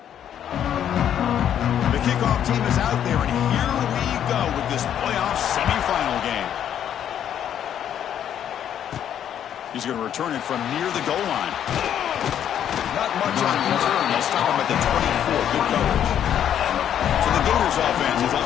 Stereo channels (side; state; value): right; quieter; 9.8 dB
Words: Kickoff team is out there, and here we go with this playoff semifinal game. He's going to return it from near the goal line. Not much on return. They'll stop him at the 24. Good coverage. So the Gators offense is up